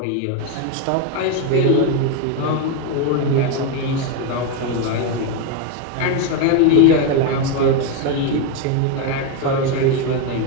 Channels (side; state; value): both; different; correlation 0.02